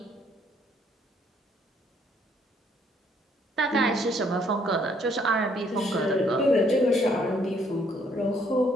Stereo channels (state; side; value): normal; both; correlation 0.67